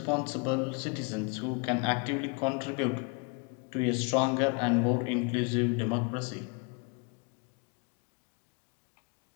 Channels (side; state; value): right; quieter; 32.8 dB